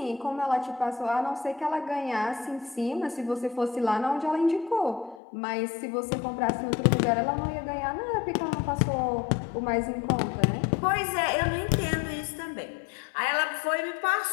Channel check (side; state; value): right; drops out; at 5.2 s